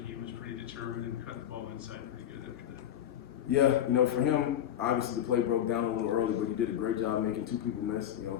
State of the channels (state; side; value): quieter; right; 10.6 dB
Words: he was pretty determined and cut the ball inside pretty good after that. Yeah, for him, obviously the play broke down a little early, but he did a great job making 2 people miss.